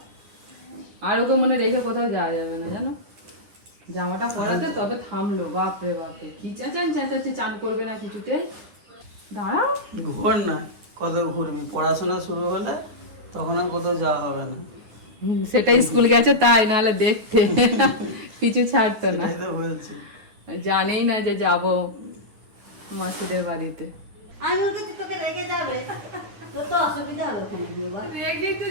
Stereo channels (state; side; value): late; left; 10 ms